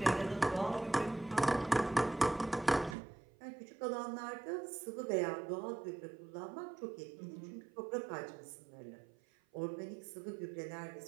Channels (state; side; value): drops out; left; at 3.0 s